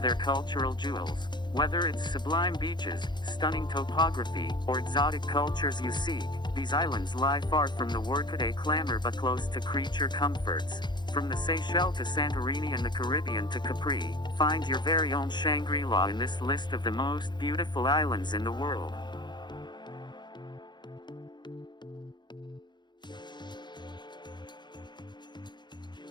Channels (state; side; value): late; right; 0.21 ms